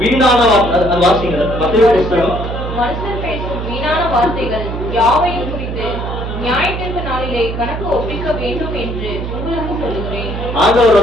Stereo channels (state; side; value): noise; right; hum, 5 dB below the sound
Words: வாசிங்க மத்தேயு புஸ்தகம். மனுஷர் பேசும் வீணான வார்த்தைகள் யாவையும் குறித்து நியாயத்திற்கு நாளிலே கணக்கு ஒப்பிக்க வேண்டும் என்று உங்களுக்கு சொல்லுகிறேன். ஆண்டவர்